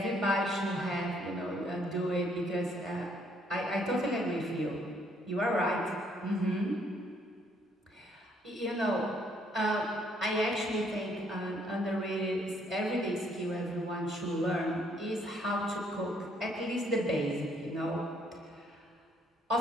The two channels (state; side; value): normal; both; correlation 0.67